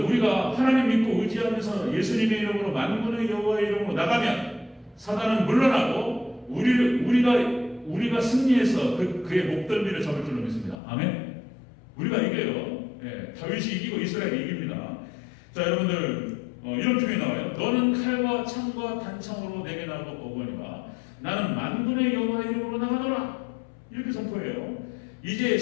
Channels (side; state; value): right; drops out; at 10.8 s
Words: 우리가 하나님 믿고 의지하면서 예수님의 이름으로 만군의 여호와의 이름으로 나가면 사단은 물러나고 우리가 승리해서 그의 목덜미를 잡을 줄로 믿습니다. 아멘. 우리가 이겨요. 예, 다윗이 이기고 이스라엘이 이깁니다. 자, 여러분들 이런 표현이 나와요. 너는 칼과 창과 단창으로 내게 나오고 오거니와 나는 만군의 여호와의 이름으로 나가노라. 이렇게 선포해요. 이제